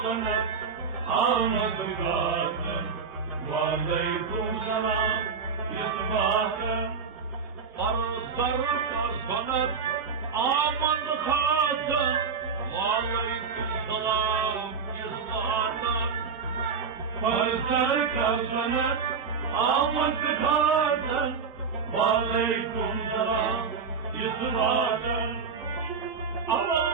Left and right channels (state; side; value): quieter; left; 5.7 dB